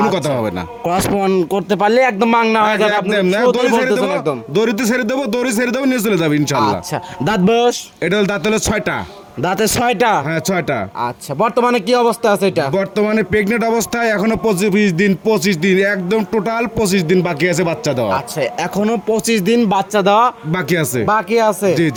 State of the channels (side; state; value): both; identical; correlation 1.00